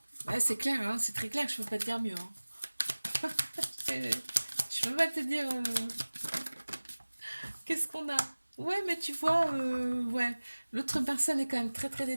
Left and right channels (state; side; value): inverted; both; correlation -1.00